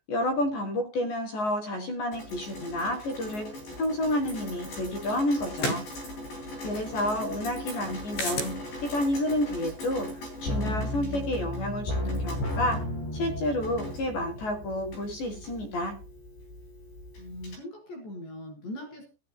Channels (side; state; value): right; late; 14 ms